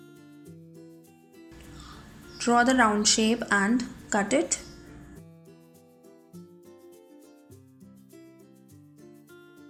Draw the round shape and cut it.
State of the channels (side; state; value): both; identical; correlation 1.00